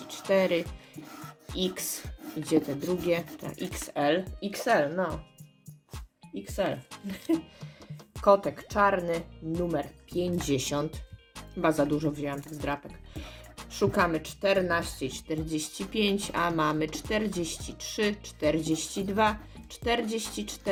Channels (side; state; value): both; identical; correlation 1.00